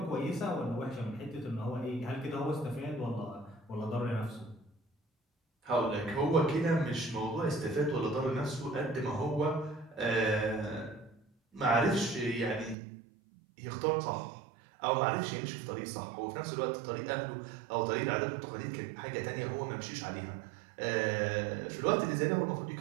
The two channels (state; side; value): drops out; left; at 12.8 s